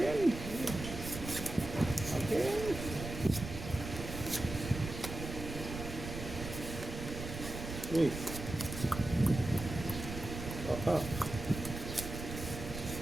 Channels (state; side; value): noise; right; rumble, 8 dB below the sound